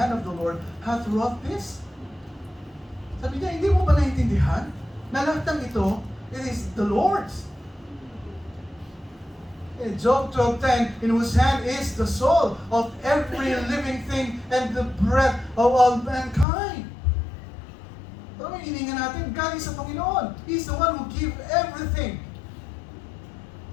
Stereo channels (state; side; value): drops out; right; at 16.4 s